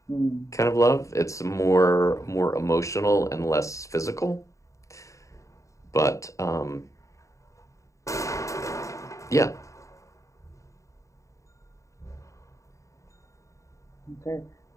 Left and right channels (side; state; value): right; late; 0.15 ms